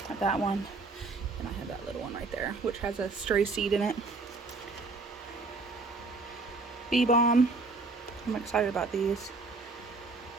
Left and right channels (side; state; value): left; quieter; 3.7 dB